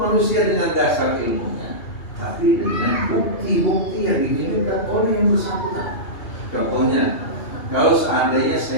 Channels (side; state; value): right; late; 2.8 ms